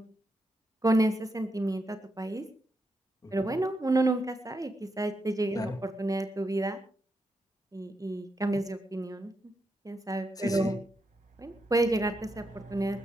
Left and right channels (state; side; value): normal; both; correlation 0.83